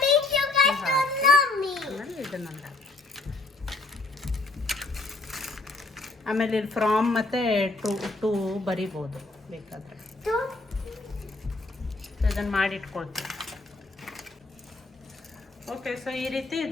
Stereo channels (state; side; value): quieter; right; 3.2 dB